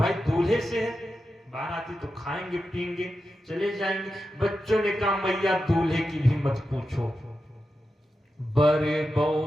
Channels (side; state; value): both; normal; correlation 0.90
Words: दूल्हे से है, बाराती तो खाएंगे पिएंगे चले जाएंगे। बच्चों ने कहा मैया दूल्हे की भी मत पूछो, बड़े